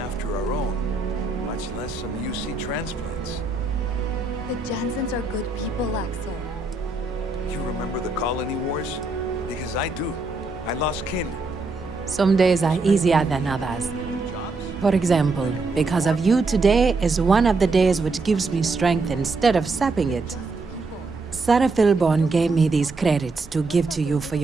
our own, much less some UC transplants. The Jansens are good people, Axel. You remember the colony wars? Because I do. I lost kin. Some days are easier than others. For example, because of you, today is one of the days which gives me strength instead of sapping it. Sarah Philborn gave me these credits to give to you for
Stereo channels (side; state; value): left; quieter; 3.6 dB